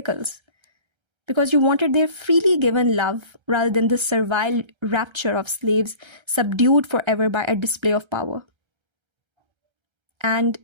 because you wanted their freely given love rather than the servile rapture of slaves subdued forever by a display of power. And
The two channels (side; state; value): left; late; 1.3 ms